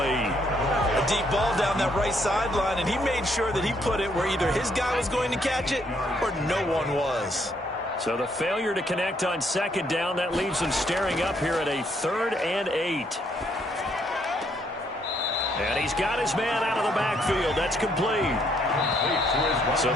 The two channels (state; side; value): normal; both; correlation 0.71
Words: A deep ball down that right sideline, and he made sure that he put it where either his guy was going to catch it or no one was. So the failure to connect on second down, that leaves them staring up here at a 3rd and 8. And he's got his man out of the backfield. That's complete. So